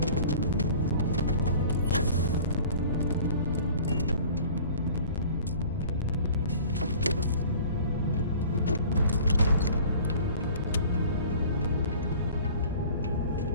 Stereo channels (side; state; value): both; inverted; correlation -0.46